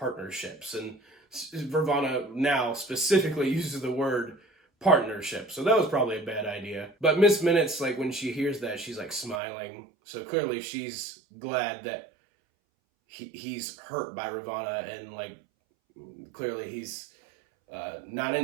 And Vervana now specifically uses the word partnership. So that was probably a bad idea. But Miss Minutes, like when she hears that, she's like smiling. So clearly she's glad that he's hurt by Ravana, and like clearly he's not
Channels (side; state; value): left; drops out; at 9.4 s